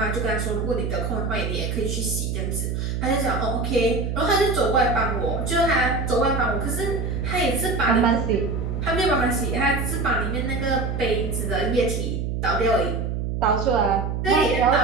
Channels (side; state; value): right; noise; hum, 2 dB below the sound